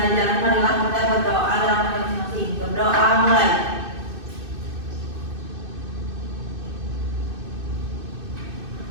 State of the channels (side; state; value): left; late; 2.6 ms